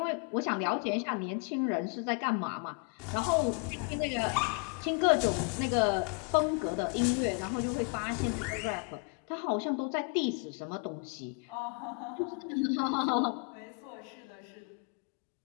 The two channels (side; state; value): right; quieter; 39.2 dB